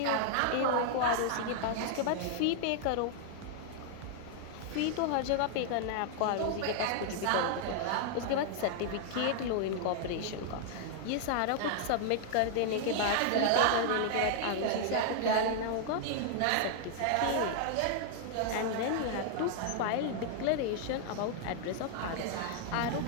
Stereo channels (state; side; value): different; both; correlation 0.00